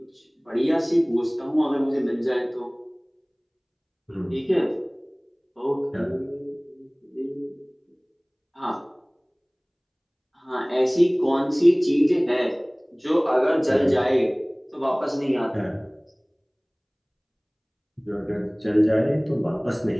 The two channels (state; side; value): identical; both; correlation 1.00